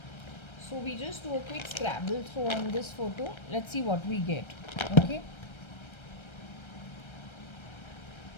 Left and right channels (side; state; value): right; late; 1.3 ms